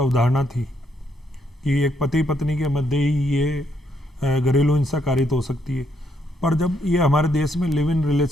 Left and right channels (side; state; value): both; normal; correlation 0.75